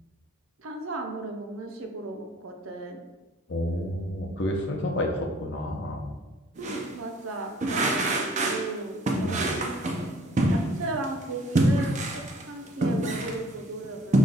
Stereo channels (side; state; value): both; normal; correlation 0.56